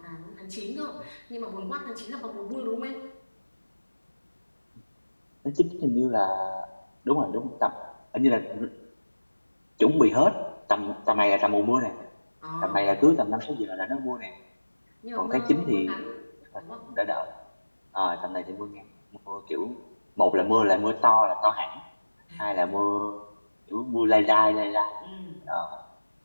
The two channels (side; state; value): both; inverted; correlation -1.00